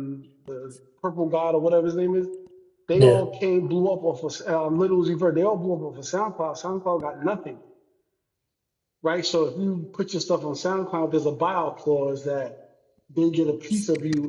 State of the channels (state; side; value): identical; both; correlation 1.00